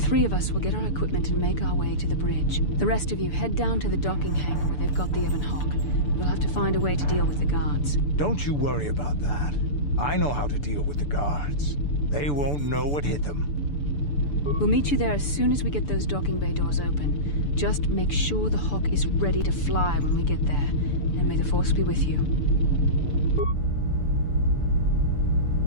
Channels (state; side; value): late; right; 6.9 ms